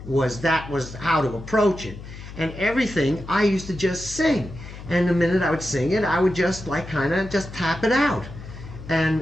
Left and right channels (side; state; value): left; noise; hum, 13 dB below the sound